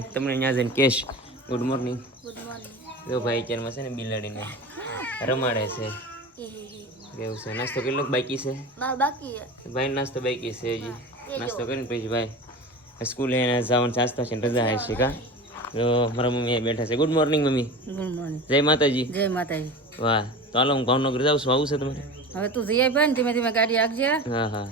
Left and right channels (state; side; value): normal; both; correlation 0.31